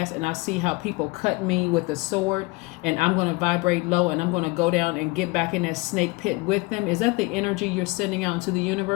and I see how people cut me with a sword, and I'm going to vibrate low and I'm going to go down and get back in that snake pit with them? Is that the energy you're sending out into the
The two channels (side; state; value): right; quieter; 24.3 dB